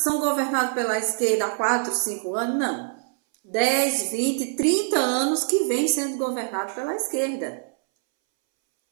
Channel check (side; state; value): left; silent; 62 dB below the other